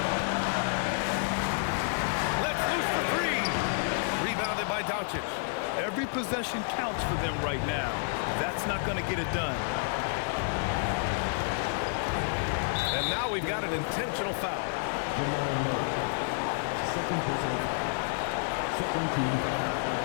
Let's loose for 3. Rebounded by Doncic. Every possession counts for them right now. That's not going to get it done. And now we've got an intentional foul. Second personal foul. Second team foul.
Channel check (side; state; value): right; silent; digital silence